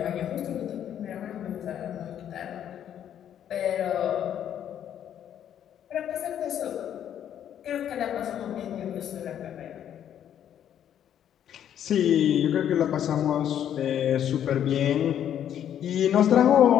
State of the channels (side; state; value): right; quieter; 10.0 dB